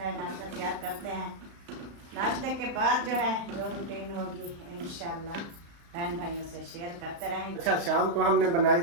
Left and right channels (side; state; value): left; late; 35 ms